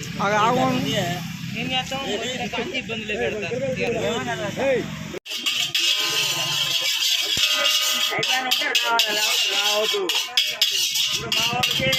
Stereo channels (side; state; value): both; identical; correlation 1.00